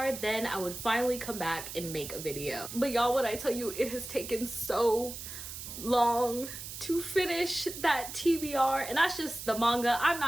then I would finally come back and make a video. But y'all, when I tell you it has taken so long to finish that TBR, and that's just the manga. I'm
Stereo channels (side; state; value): right; noise; hiss, 9 dB below the sound